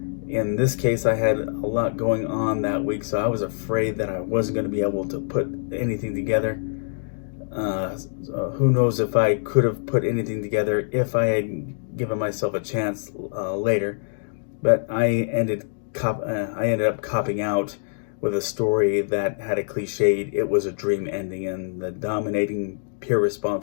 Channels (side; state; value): right; silent; digital silence